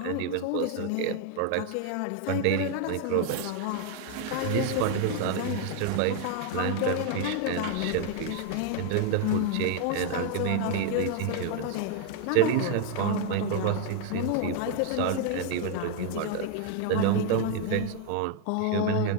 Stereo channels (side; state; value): both; different; correlation 0.00